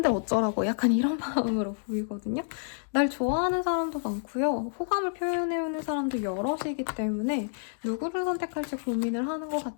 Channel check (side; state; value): right; silent; digital silence